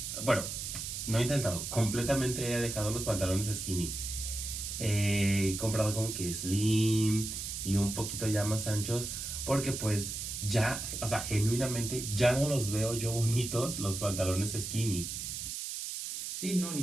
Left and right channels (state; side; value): noise; right; hiss, 5 dB below the sound